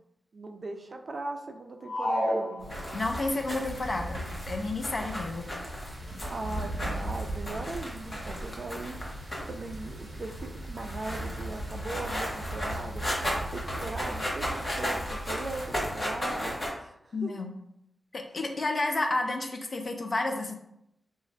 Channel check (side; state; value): both; normal; correlation 0.90